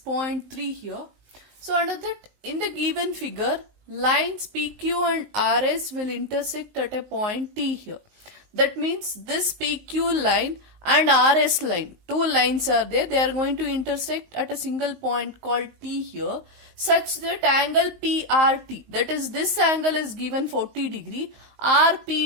here. So, under that, in the given figure, lines PQ and RS will intersect at a point T here. That means this PQ line and RS line, two lines are there, they are going to intersect at a single point called T here, such that angle PRT, that is this angle is given 40 degree,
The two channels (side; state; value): left; late; 19 ms